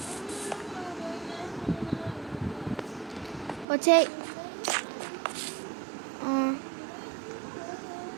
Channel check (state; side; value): drops out; left; at 3.7 s